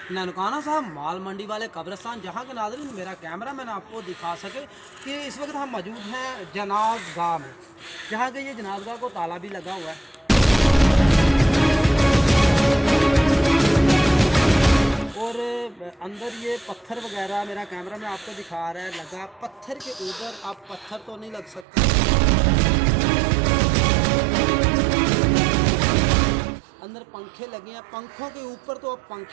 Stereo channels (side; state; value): left; drops out; at 21.7 s